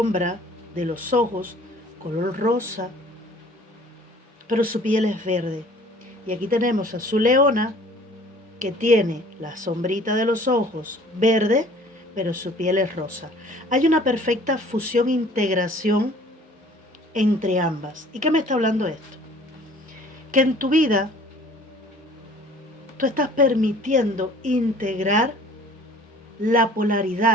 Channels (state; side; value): normal; both; correlation 0.51